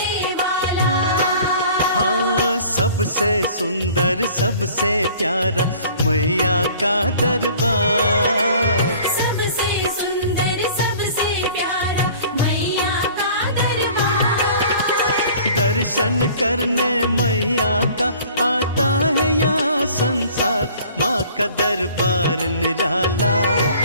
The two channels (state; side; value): inverted; both; correlation -0.50